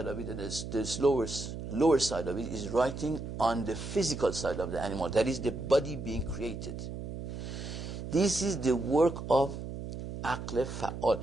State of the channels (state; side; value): noise; right; hum, 8 dB below the sound